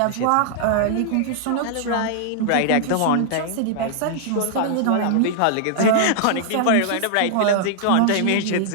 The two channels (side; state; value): both; different; correlation -0.01